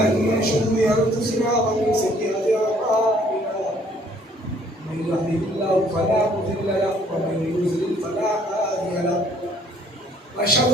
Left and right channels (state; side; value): normal; both; correlation 0.61